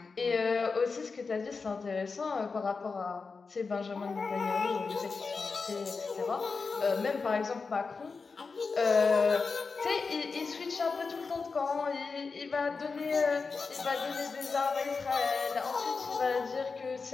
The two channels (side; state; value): right; quieter; 4.6 dB